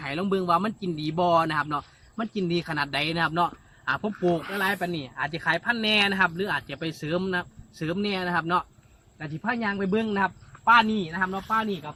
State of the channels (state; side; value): identical; both; correlation 1.00